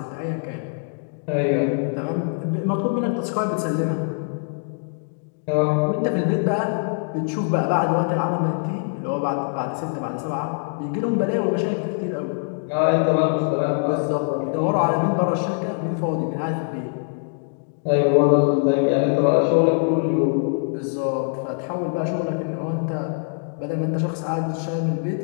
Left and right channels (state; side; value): silent; right; digital silence